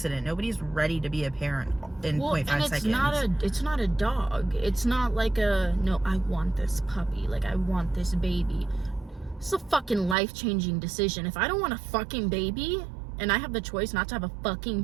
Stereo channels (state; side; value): drops out; left; at 10.2 s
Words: Nobody's ready to be a parent in 0.5 seconds. It's not a dog. It's not like no, I want this puppy. Like, I want this baby. It's a fucking life-changing decision. If I don't want a fucking baby, and I have the choice not to have a fucking